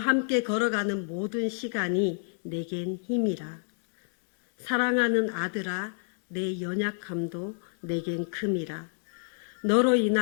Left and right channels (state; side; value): silent; right; digital silence